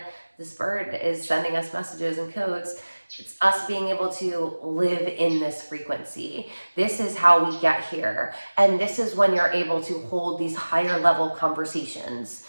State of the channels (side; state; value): both; inverted; correlation -1.00